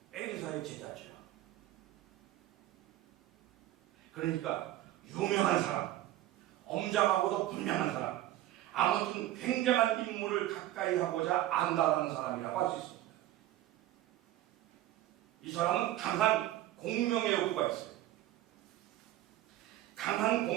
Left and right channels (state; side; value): quieter; left; 14.4 dB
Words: 엘리사의 제자죠. 그러니까 유명한 사람, 엄장하고도 분명한 사람, 아무튼 굉장한 인물을 가까이 하고자 안다라는 사람이라고 할 수 있습니다. 이 사람은 강한 공명의 욕구가 있어요. 강한